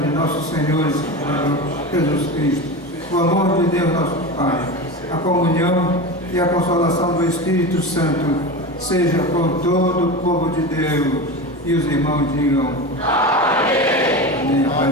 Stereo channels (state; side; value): normal; both; correlation 0.25